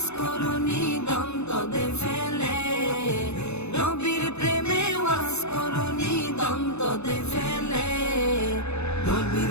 করুনি দন্তদে ফেলে, নবীর প্রেমে ওয়াজ করুনি দন্তদে ফেলে। নবীর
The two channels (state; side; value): late; right; 0.81 ms